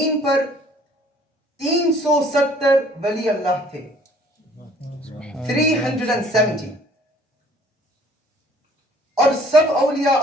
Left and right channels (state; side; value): normal; both; correlation 0.56